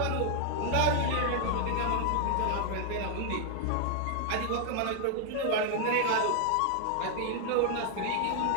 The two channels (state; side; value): different; both; correlation 0.00